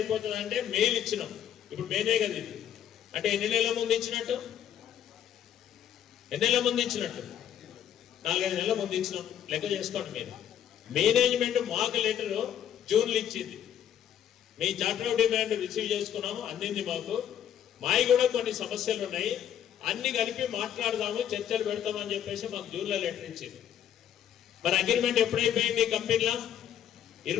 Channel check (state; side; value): quieter; right; 10.0 dB